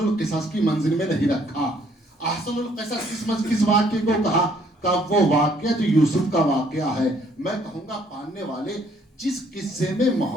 کی منزل میں نہیں رکھا. احسن القصص کس واقعے کو کہا؟ کہ وہ واقعہ جو یوسف کا واقعہ ہے. میں کہوں گا پڑھنے والے، جس قصے میں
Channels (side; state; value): both; normal; correlation 0.64